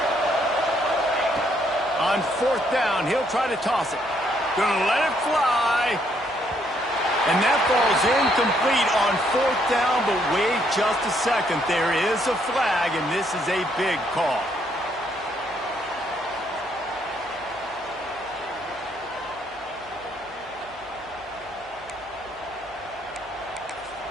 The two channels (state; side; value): noise; right; hum, 27 dB below the sound